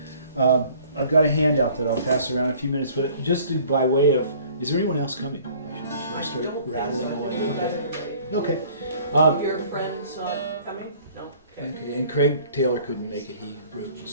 I've got a handout that I'll pass around in a few minutes, but just by way of, is there anyone else coming? I should start rattling away. Okay. Your friend's not coming? No. Okay. And Craig Taylor couldn't make it. He wrote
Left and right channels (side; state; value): both; inverted; correlation -0.53